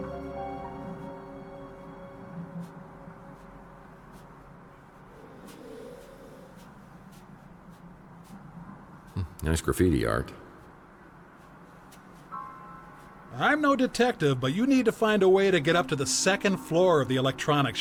Nice graffiti art. I'm no detective, but you need to find a way to get up to the second floor of the electronics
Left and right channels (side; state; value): both; identical; correlation 1.00